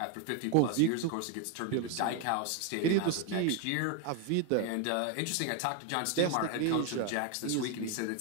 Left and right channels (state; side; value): different; both; correlation 0.01